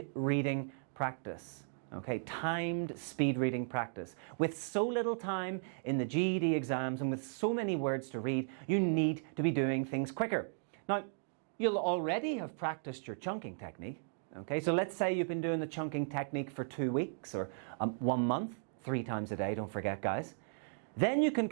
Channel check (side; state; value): left; silent; digital silence